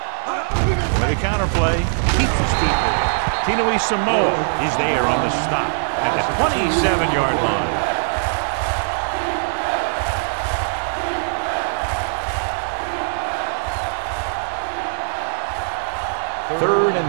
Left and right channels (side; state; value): left; silent; digital silence